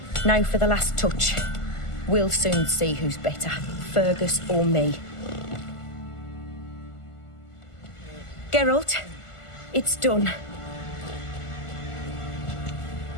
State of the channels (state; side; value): late; right; 1.5 ms